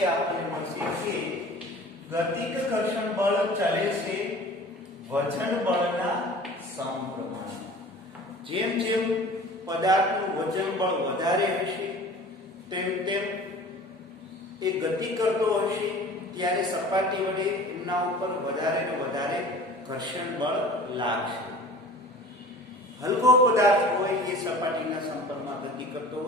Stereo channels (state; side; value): normal; both; correlation 0.43